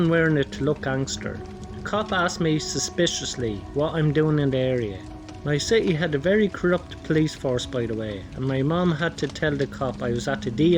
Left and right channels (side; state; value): both; identical; correlation 1.00